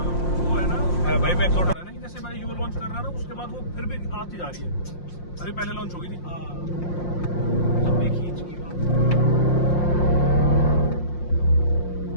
भाई, मैक्सोटा है ना, जैसे मैं यू लॉन्च कर रहा ना, उसके बाद वो फिर भी आती जा रही है। अरे पहले लॉन्च हो गई थी, लंबी खींच की बात,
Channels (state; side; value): late; right; 5.7 ms